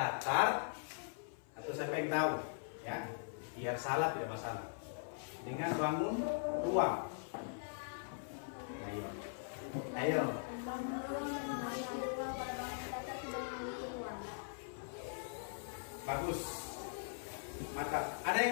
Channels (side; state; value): right; silent; 50 dB below the other